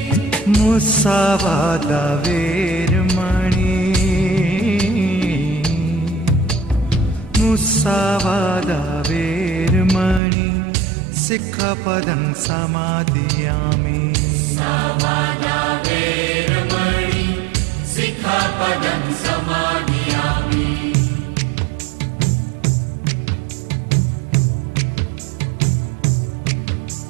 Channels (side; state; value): left; drops out; at 10.2 s